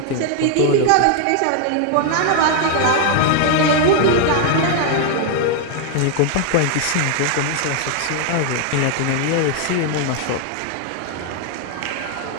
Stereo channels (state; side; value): different; both; correlation 0.00